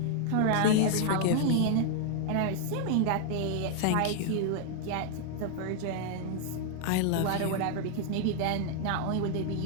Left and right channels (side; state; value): both; different; correlation 0.00